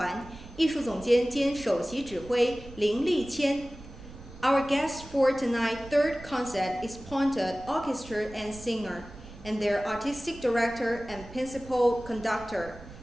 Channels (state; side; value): noise; right; rumble, 17 dB below the sound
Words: 艺术总监兼首席指挥林立谦。Our guest for tonight's third concert is Ponte Orchestra and Singer, and their artistic director and principal conductor,